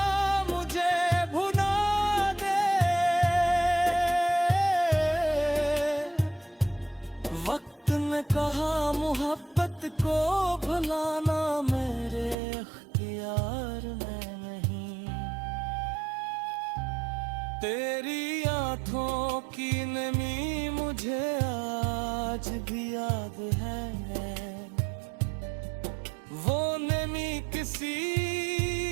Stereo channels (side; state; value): left; drops out; at 12.4 s